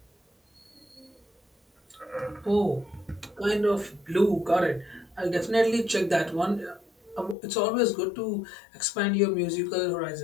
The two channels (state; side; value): drops out; right; at 7.4 s